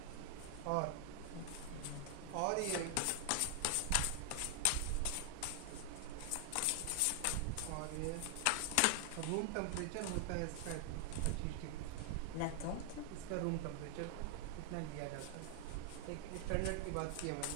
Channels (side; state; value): both; different; correlation 0.00